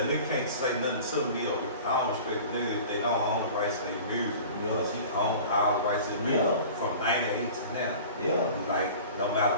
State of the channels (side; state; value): both; inverted; correlation -0.40